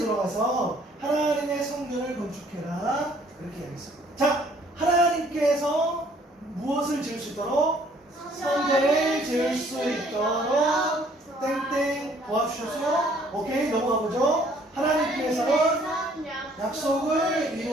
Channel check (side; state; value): both; normal; correlation 0.60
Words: 하나님의 성전을 건축해라. 그렇게 이야기했어요. 자, 하나님께서 무엇을 지을 수 있도록? 성전을 지을 수 있도록 땡땡 도와주셨어요? 오케이, 넘어가 보죠. 하나님께서는 약속을